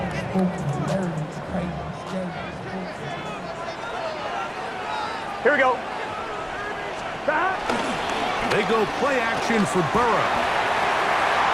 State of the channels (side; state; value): both; identical; correlation 1.00